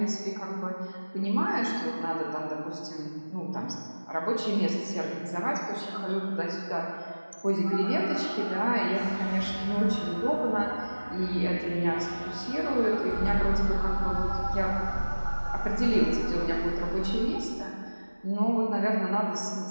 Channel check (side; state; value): both; inverted; correlation -1.00